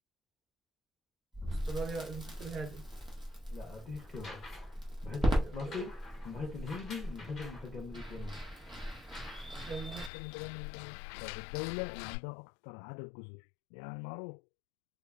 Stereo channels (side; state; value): right; drops out; at 10.1 s